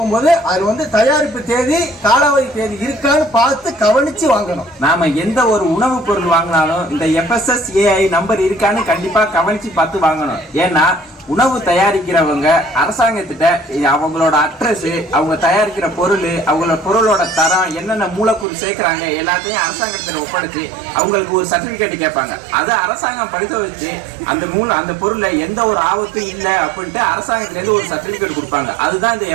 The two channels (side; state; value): left; drops out; at 18.4 s